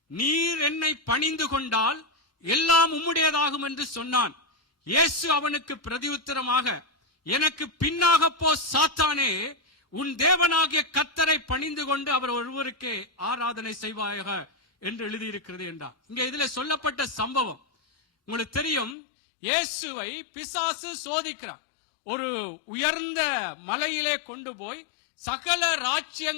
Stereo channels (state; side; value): drops out; right; at 18.9 s